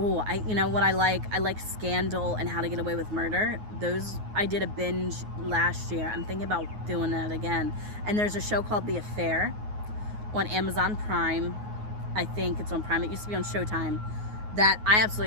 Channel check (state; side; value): late; left; 9.5 ms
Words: you know what I like Scandal and How to Get Away with Murder. Those, I did a binge last year. I'm thinking about doing that again. And there's a show called The Affair on Amazon Prime. I think it's on Prime. It used to be on Showtime. That I